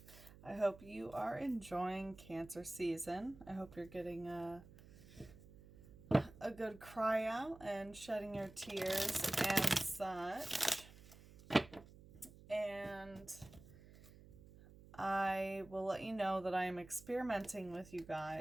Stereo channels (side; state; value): right; noise; hum, 20 dB below the sound